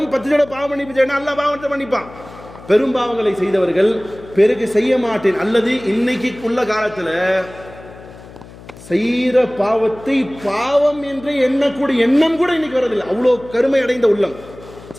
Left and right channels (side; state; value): left; noise; hum, 19 dB below the sound